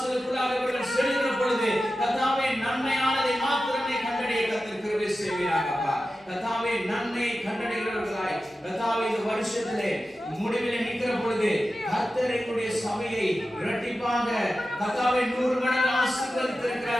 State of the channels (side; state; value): both; normal; correlation 0.93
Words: இவர்கள் செல்கிற பொழுது கர்த்தாவே நன்மையானதை மாத்திரமே கண்டடைய கர்த்தர் கிருபை செய்வீராக. அப்பா, கர்த்தாவே நன்மையை கண்டடைகிறவர்களாய் கர்த்தாவே இந்த வருஷத்திலே முடிவிலே நிற்கிற பொழுது கர்த்தர் எங்களுடைய சபையை இரட்டிப்பாக கர்த்தாவே 100 மடங்கு